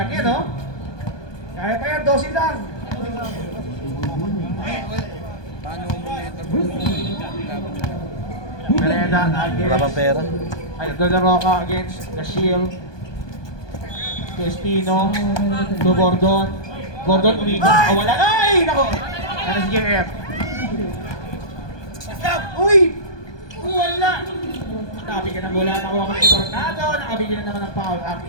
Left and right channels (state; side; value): late; right; 1.2 ms